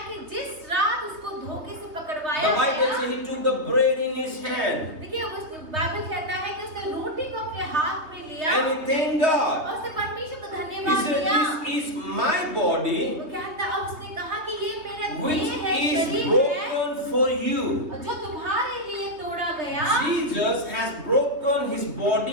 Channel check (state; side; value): late; left; 3.2 ms